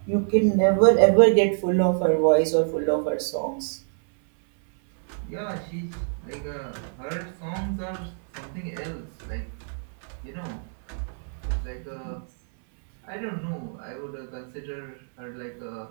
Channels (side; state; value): left; silent; 58 dB below the other